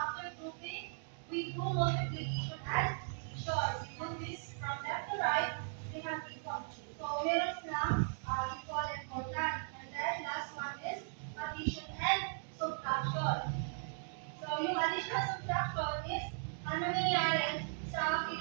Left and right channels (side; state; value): left; silent; digital silence